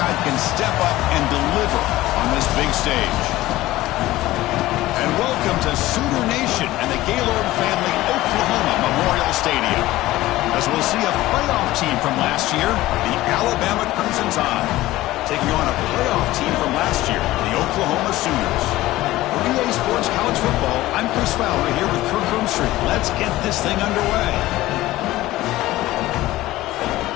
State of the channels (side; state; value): right; quieter; 16.8 dB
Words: can step up and deliver on this big stage? And welcome to Sooner Nation and the Gaylord Family Oklahoma Memorial Stadium, as we'll see a playoff team from last year, the Alabama Crimson Tide, taking on a playoff team from last year, the Oklahoma Sooners. For EA Sports College Football, I'm Chris Fowler here with Kirk Hermstreet. Let's get this thing underway.